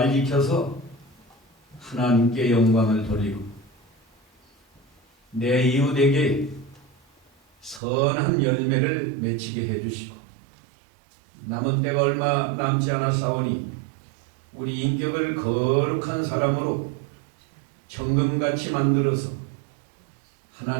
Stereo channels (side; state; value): left; drops out; at 7.8 s